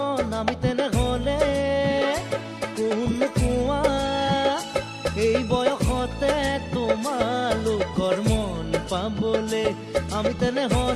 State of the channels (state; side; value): identical; both; correlation 1.00